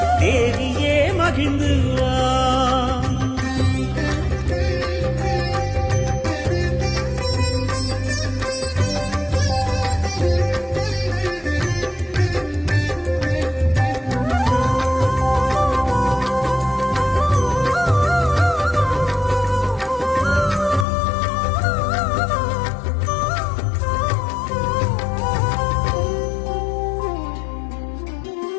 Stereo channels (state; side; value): drops out; right; at 20.9 s